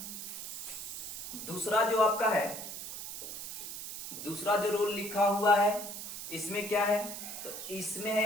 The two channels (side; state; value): right; noise; hiss, 8 dB below the sound